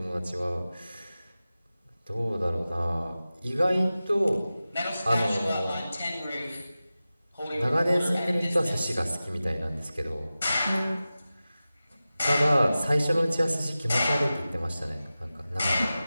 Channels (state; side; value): inverted; both; correlation -0.95